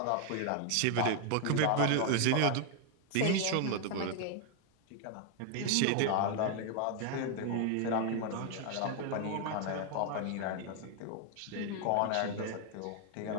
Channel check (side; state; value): both; different; correlation 0.01